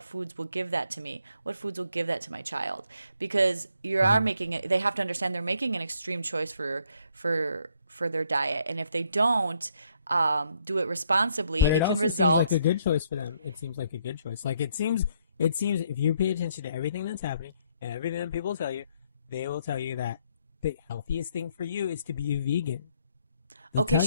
foods will give that to me? What foods will give that to my child? Because you are making it, they have to understand they're making an extreme choice for their diet. And if they don't do it responsibly, it can result. Seems like a good choice for them. It seems like a good choice. Like it seems if you pay attention to everything that's happening and everything that people tell you, they will tell you that the healthiest thing for you is to be a vegan. They'll tell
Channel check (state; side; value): inverted; both; correlation -0.70